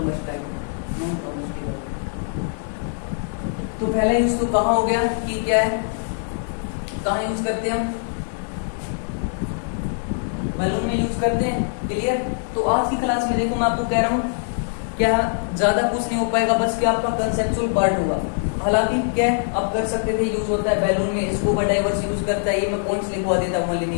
तो पहला यूज तो कहाँ हो गया कि क्या है, कहाँ यूज करते हैं हम, बैलून में यूज करते हैं। क्लियर, तो आज की क्लास में देखो मैं आपको कह रहा हूँ क्या ज्यादा कुछ नहीं हो पाएगा, बस क्या आपका कंसेप्चुअल पार्ट होगा। हालांकि क्या आप कर सकते थे, यूज होता है बैलून में, स्कूबा डाइवर्स यूज करता है, ये मैं पॉइंट्स लिखवा देता हूँ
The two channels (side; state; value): right; silent; digital silence